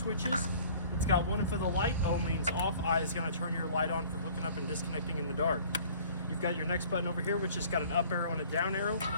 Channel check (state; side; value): inverted; both; correlation -0.50